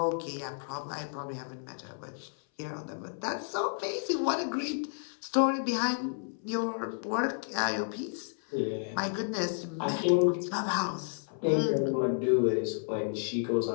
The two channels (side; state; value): right; silent; 57 dB below the other